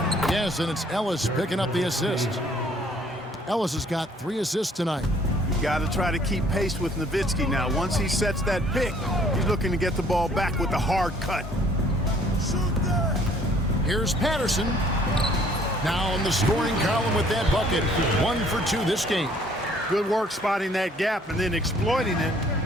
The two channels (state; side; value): normal; both; correlation 0.59